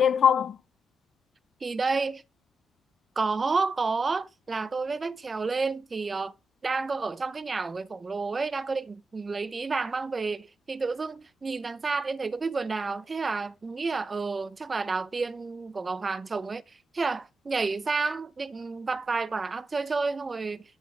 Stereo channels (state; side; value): normal; both; correlation 0.87